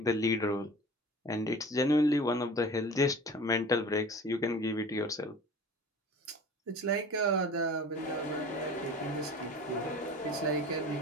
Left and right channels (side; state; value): both; normal; correlation 0.40